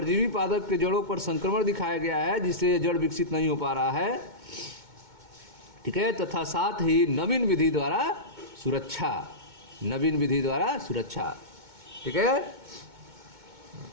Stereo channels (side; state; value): left; late; 2.2 ms